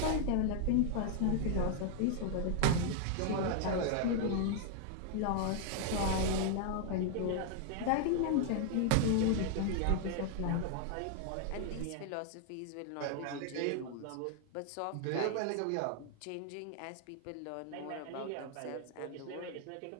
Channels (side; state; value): both; different; correlation 0.00